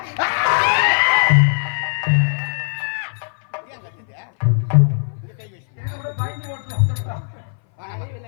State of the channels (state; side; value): silent; right; 59 dB below the other